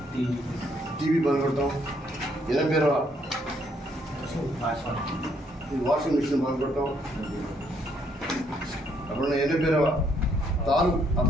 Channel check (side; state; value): both; normal; correlation 0.70